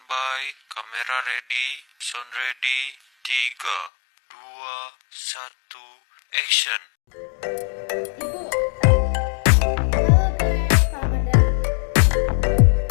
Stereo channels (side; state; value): right; drops out; at 3.9 s